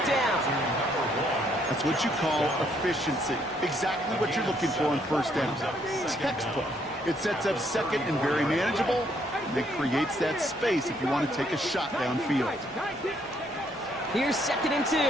down. That's what you call efficiency. Exactly what you're looking for on first down. Textbook. It sets up second and very manageable, and it creates that space if you want to take a shot downfield. Here's 2nd and 2. Throw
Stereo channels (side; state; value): both; normal; correlation 0.69